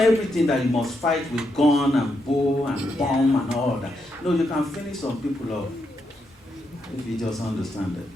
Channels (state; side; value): normal; both; correlation 0.81